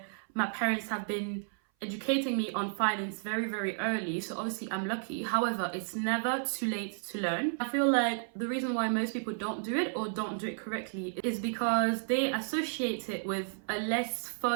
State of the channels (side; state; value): left; silent; 56 dB below the other